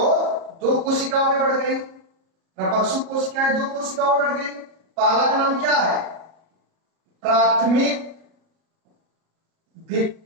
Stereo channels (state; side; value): late; left; 37 ms